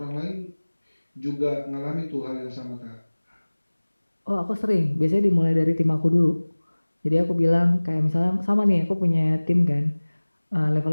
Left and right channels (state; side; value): inverted; both; correlation -1.00